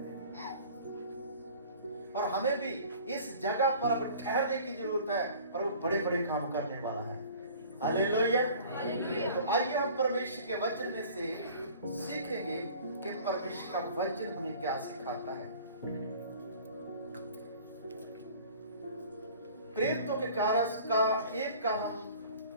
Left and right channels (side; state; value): both; inverted; correlation -0.47